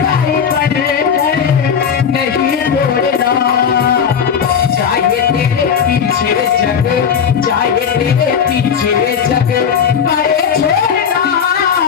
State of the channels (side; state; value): right; quieter; 7.3 dB